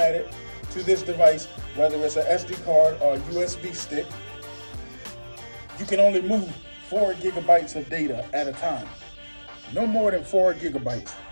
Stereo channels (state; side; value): inverted; both; correlation -1.00